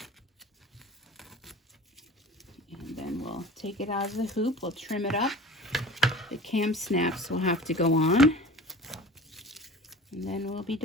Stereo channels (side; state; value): both; normal; correlation 0.39